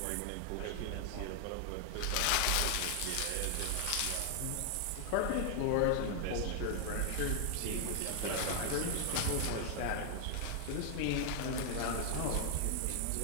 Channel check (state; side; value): different; both; correlation 0.00